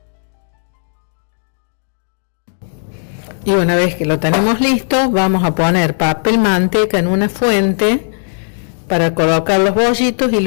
Y una vez que lo tenemos listo, vamos a poner papel manteca en una fuente para colocar los bollitos y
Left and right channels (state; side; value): silent; right; digital silence